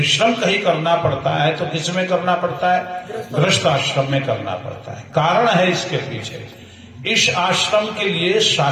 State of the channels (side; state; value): both; identical; correlation 1.00